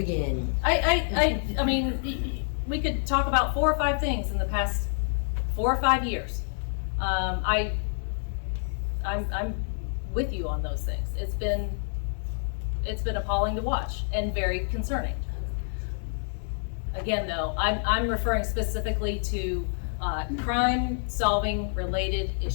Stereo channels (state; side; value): silent; right; digital silence